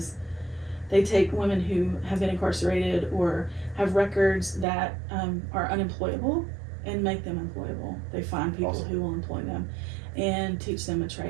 they take women who have been incarcerated or have records that are unemployable and make them employable. They find people Awesome. who will employ them and teach them a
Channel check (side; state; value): left; drops out; at 4.7 s